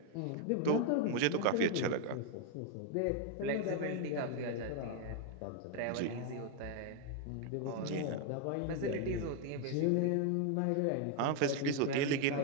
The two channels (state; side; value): different; both; correlation 0.00